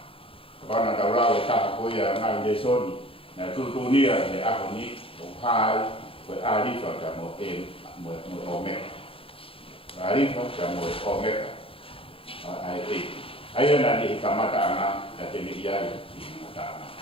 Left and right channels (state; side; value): late; right; 0.27 ms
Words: pana da ra ta ko ya na le soni na tu nia ne a ko ni o hai ko ari fa ka mo o me ari fa ka mo o me ai na ni ka mata ana ka te ni ya ni mata ana